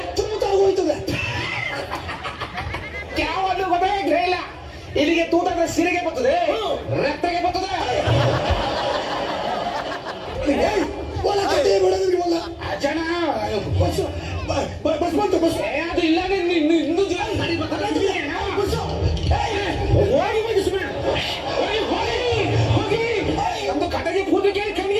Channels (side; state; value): both; identical; correlation 1.00